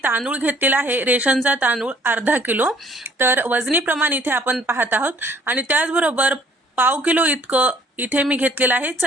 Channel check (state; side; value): normal; both; correlation 0.58